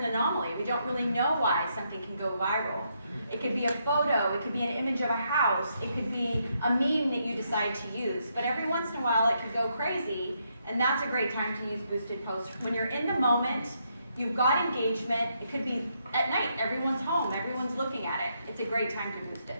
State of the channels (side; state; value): both; inverted; correlation -0.77